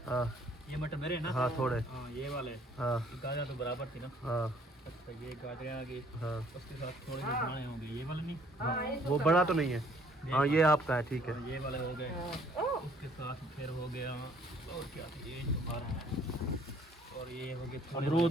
हाँ ये मटर मेरे ना। हाँ थोड़े। हाँ ये वाले, हाँ गाजर तो बराबर थी ना। हाँ अच्छा ये गाजरें आ गई, हाँ उसके साथ थोड़े से दाने होंगे, ये वाले नहीं। हाँ, वो बड़ा तो नहीं है। हाँ ये आपका है, ठीक है। हाँ, ये वाले हो गए, उसके साथ फिर हो गया और क्या था, ये तुम्हारा है, और ये हो गए थोड़े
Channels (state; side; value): normal; both; correlation 0.61